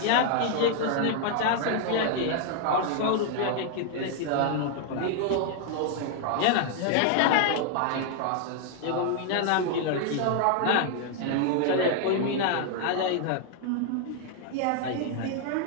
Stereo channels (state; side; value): different; both; correlation 0.00